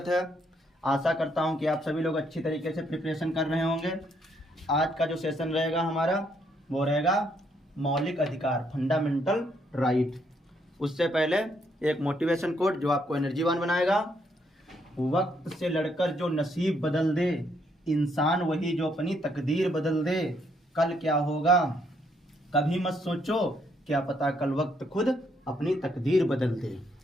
है। आशा करता हूं कि आप सभी लोग अच्छी तरीके से प्रिपरेशन कर रहे होंगे। आज का जो सेशन रहेगा हमारा वो रहेगा मौलिक अधिकार, फंडामेंटल राइट। उससे पहले एक मोटिवेशन कोट जो आपको एनर्जीवान बनाएगा। वक्त से लड़कर जो नसीब बदल दे, इंसान वही जो अपनी तकदीर बदल दे। कल क्या होगा कभी मत सोचो, क्या पता कल वक्त खुद अपनी तकदीर बदल दे।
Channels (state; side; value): normal; both; correlation 0.72